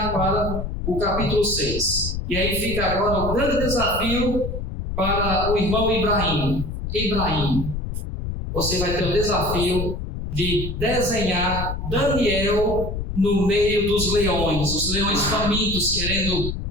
para o capítulo 6. E aí fica agora o grande desafio para o irmão Ibrahim. Ibrahim, você vai ter o desafio de desenhar Daniel no meio dos leões, os leões famintos querendo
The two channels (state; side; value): noise; left; rumble, 5 dB below the sound